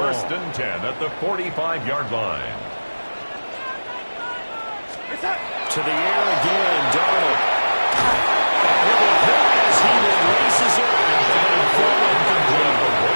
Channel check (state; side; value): inverted; both; correlation -1.00